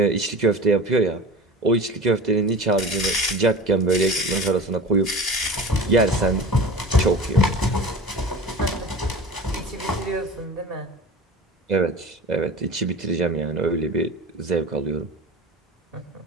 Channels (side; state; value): both; normal; correlation 0.35